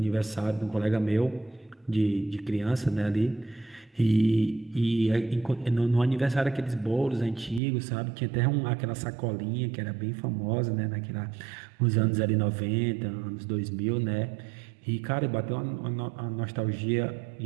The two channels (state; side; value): drops out; left; at 7.6 s